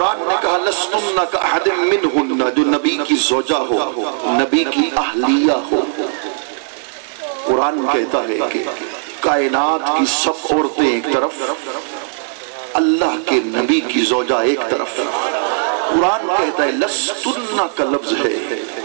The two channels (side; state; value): left; silent; 66 dB below the other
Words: نے کہا لستن کأحد منہن، جو نبی کی زوجہ ہو، نبی کی اہلیہ ہو. قرآن کہتا ہے کہ کائنات کی سب عورتیں ایک طرف، اللہ کے نبی کی زوجہ ایک طرف. قرآن کہتا ہے لستن کا لفظ ہے